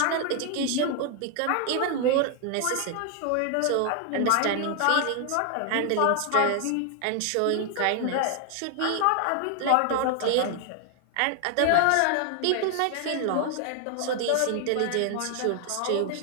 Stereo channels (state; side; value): different; both; correlation 0.00